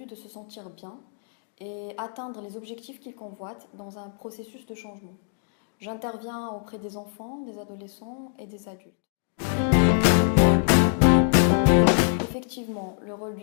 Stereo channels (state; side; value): silent; right; digital silence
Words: de se sentir bien et atteindre les objectifs qu'il convoite dans un processus de changement. J'interviens auprès des enfants, des adolescents et des adultes. Effectivement, le rôle